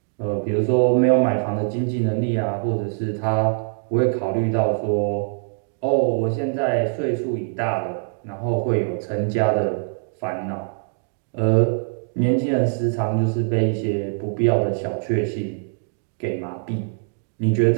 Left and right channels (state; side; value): silent; left; digital silence